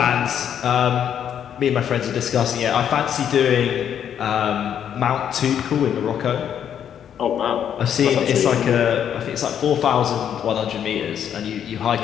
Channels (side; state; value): right; quieter; 9.1 dB